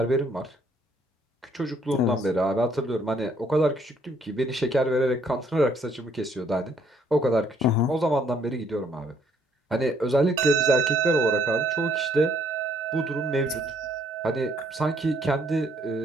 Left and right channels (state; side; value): normal; both; correlation 0.66